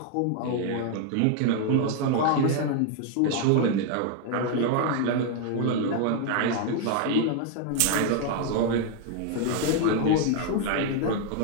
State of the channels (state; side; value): different; both; correlation 0.00